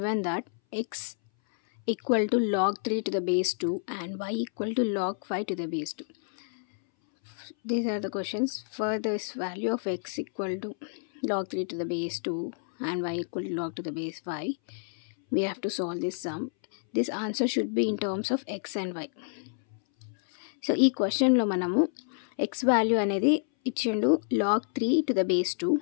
that x equal to log 3 to the base 2 and y equal to log 5 to the base 2. These are the questions. For this value of x equal to log 3 to the base 2 and y equal to log to the base 5, we have to solve this sum. This answer should be in terms of x and y. So ఈ క్వశ్చన్లో మనము ఎక్స్ వాల్యూ అనేది ఇచ్చిండు log 3 to the base 2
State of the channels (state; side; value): silent; right; 59 dB below the other